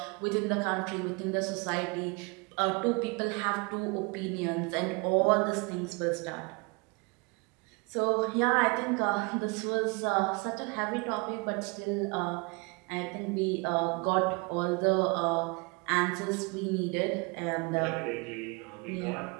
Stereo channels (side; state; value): left; quieter; 29.4 dB